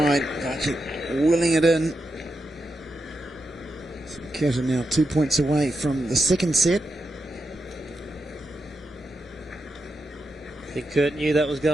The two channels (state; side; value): normal; both; correlation 0.86